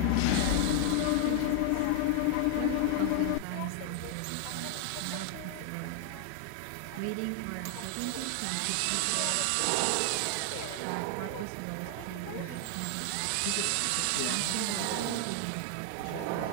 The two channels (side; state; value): both; different; correlation 0.00